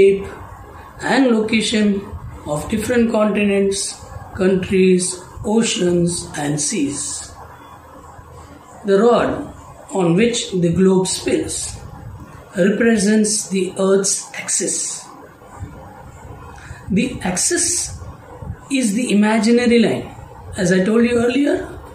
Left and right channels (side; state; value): both; identical; correlation 1.00